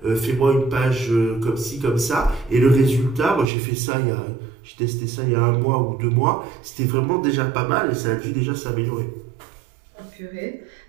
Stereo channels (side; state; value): left; drops out; at 3.5 s